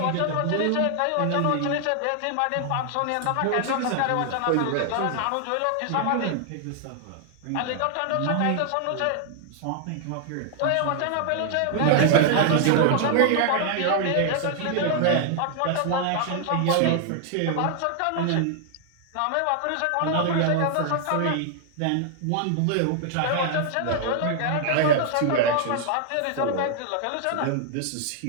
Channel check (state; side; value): different; both; correlation 0.00